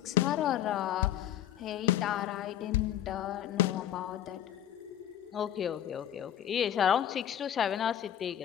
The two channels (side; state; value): right; quieter; 11.0 dB